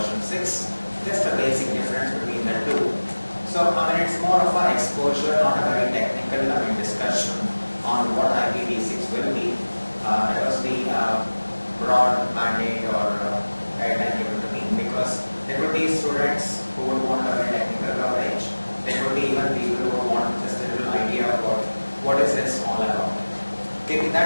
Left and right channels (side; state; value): both; inverted; correlation -1.00